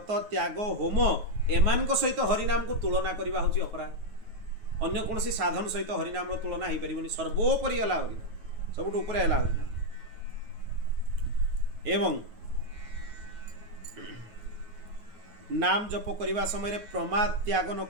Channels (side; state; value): left; late; 9.3 ms